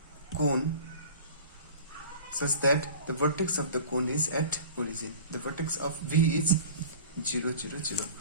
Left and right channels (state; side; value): inverted; both; correlation -0.41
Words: cone such that the vertex of the cone is at origin. The vertex of V is 0 0 0.